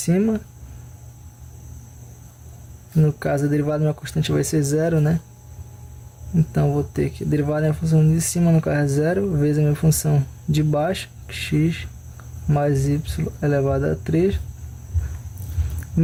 no caso a derivada da minha constante vai ser 0, né? Então vou ter que derivada da minha função de cima, no caso é 0, vezes a minha função de baixo, x mais y elevado a 3,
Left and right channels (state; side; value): identical; both; correlation 1.00